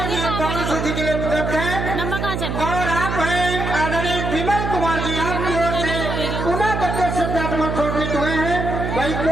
सूची के लिए उपलब्ध है। और आप हैं आदरणीय विमल कुमार जी, आपकी ओर से पुनः 10 श्रद्धासुमन समर्पित हुए हैं भाई।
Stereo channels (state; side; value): noise; right; hum, 3 dB below the sound